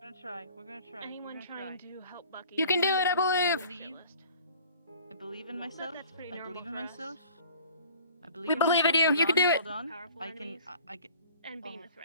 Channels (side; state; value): both; inverted; correlation -0.48